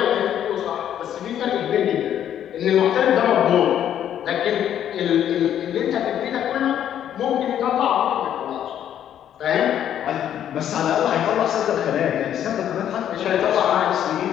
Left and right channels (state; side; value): quieter; right; 10.3 dB